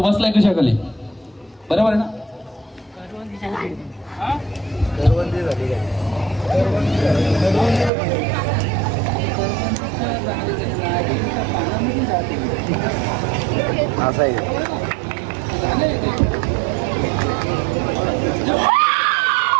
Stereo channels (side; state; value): left; drops out; at 7.9 s